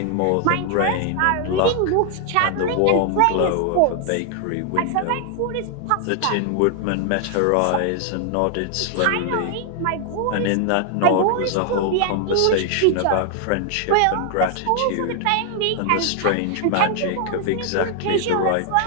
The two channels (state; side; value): different; both; correlation 0.00